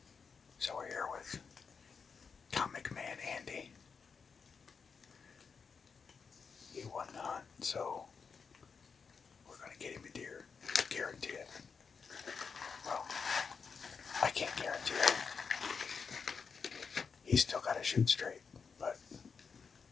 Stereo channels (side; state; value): right; quieter; 5.6 dB